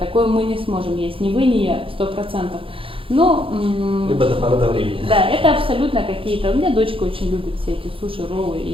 мы не сможем есть. Ни вы, ни я, 100%. Но, Либо до поры до времени. да, это абсолютно какие-то. У меня дочка очень любит все эти суши, роллы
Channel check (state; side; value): late; left; 0.26 ms